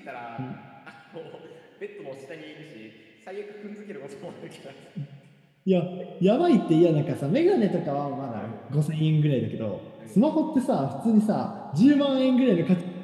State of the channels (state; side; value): identical; both; correlation 1.00